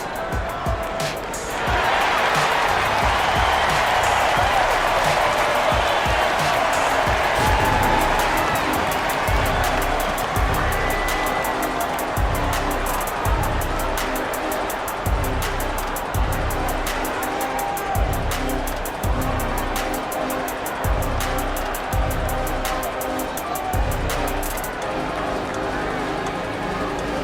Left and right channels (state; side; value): identical; both; correlation 1.00